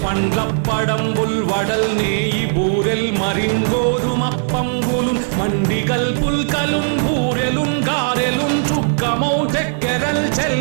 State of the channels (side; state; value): left; silent; digital silence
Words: పండ్లప్పడంబుల్ వడల్ నేయి బూరెల్ మరింగోదుమప్పంబులు మండి కల్పుల్కలున్ బూరెలున్ గారెలున్ చొక్కమౌ చెక్కెరల్